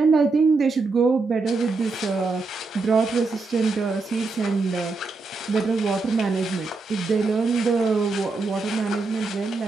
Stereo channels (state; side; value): quieter; left; 3.9 dB